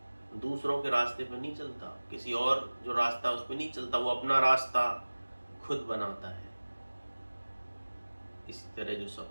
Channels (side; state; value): both; inverted; correlation -1.00